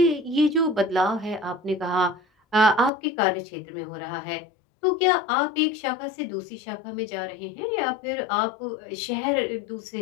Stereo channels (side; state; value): right; drops out; at 2.9 s